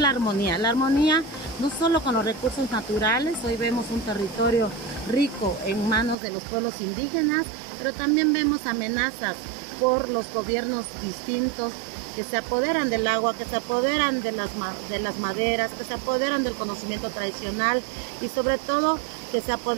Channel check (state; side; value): drops out; left; at 6.2 s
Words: armonía no solo con los recursos naturales. Hoy vemos un territorio rico en manos de los pueblos indígenas, pero también vemos amenazas por los gobiernos distintos que se apoderan del agua, que se apoderan de las maderas, que se apoderan del conocimiento tradicional y sobre todo que se